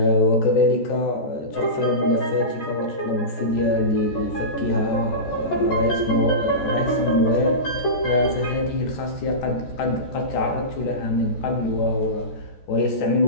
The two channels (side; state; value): right; late; 14 ms